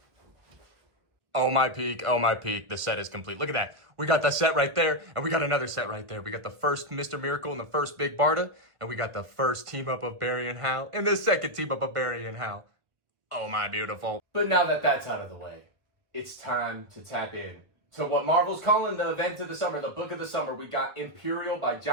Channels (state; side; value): late; left; 1.4 ms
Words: Oh my peak, the set is complete. Look at that. We got the set right there, and we got another set right there. We got the first Mr. Miracle and the first Big Barda, and we got the first team up of Barry and Hal, and the second team up of Barry and Hal. Oh my beautiful. But now that that's out of the way, it's time to tap in to what Marvel's calling the event of the summer, the book of the summer. We got Imperial by